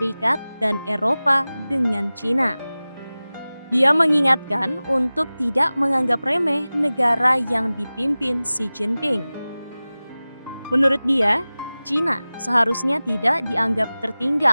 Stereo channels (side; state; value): both; inverted; correlation -0.98